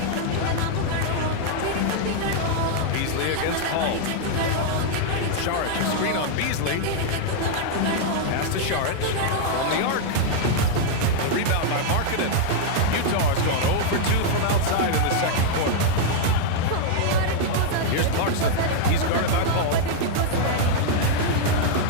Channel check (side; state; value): both; different; correlation -0.01